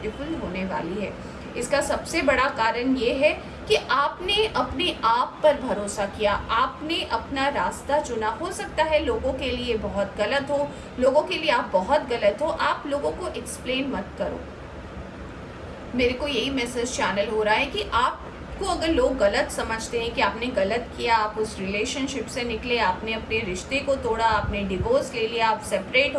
होने वाली है। इसका सबसे बड़ा कारण ये है कि आपने अपने आप पर भरोसा किया, आपने अपना रास्ता चुना। हो सकता है लोगों के लिए बहुत गलत हो, लोगों के लिए आप बहुत गलत हो, आप लोगों को एक्सप्लेन मत करो। मेरे को यही मैसेज चैनल हो रहा है कि आपको अगर लोग गलत समझते हैं कि आपने गलत किया, आप उस रिलेशनशिप से निकले, आपने अपने रिश्ते को तोड़ा, आपने डिवोर्स ले लिया, आप सेपरेट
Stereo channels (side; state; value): both; identical; correlation 1.00